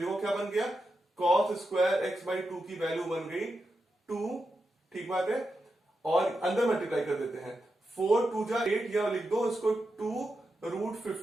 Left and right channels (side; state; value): both; normal; correlation 0.88